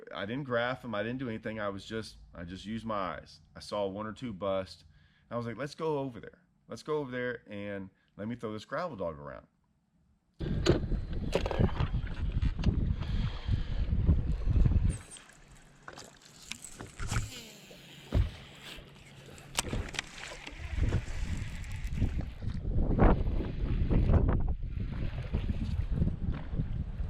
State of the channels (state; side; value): identical; both; correlation 1.00